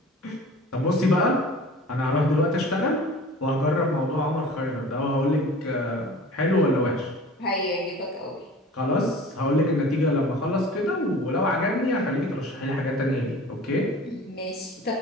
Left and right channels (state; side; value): normal; both; correlation 0.42